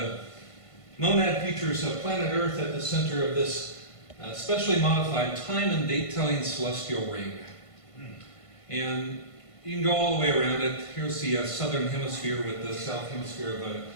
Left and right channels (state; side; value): late; right; 1.5 ms